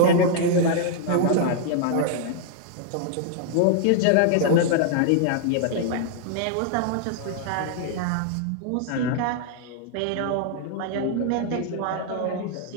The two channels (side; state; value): both; different; correlation -0.01